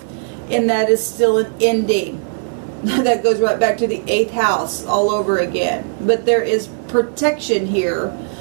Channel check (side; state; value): left; silent; 68 dB below the other